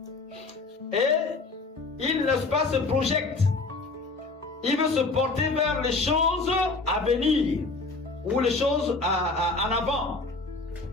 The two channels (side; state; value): right; quieter; 3.6 dB